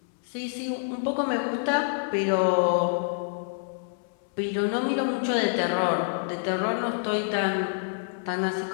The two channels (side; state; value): right; silent; 60 dB below the other